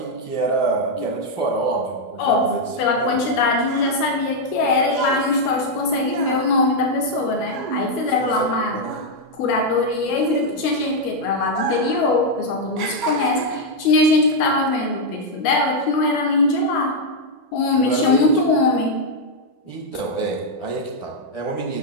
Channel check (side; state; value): right; late; 12 ms